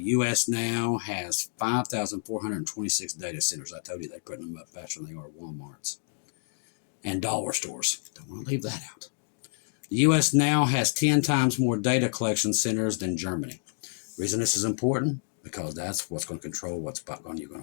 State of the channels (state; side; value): silent; right; digital silence